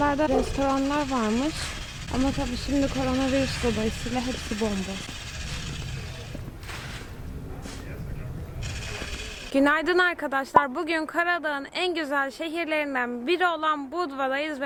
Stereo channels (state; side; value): identical; both; correlation 1.00